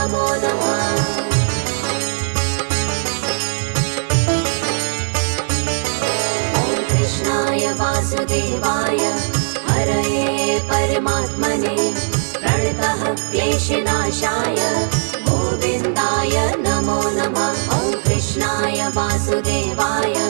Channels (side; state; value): left; silent; digital silence